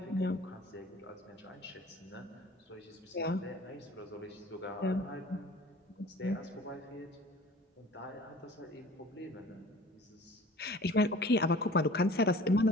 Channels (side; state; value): both; normal; correlation 0.45